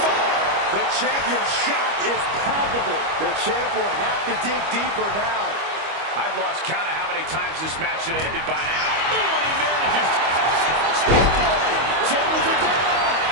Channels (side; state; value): left; late; 25 ms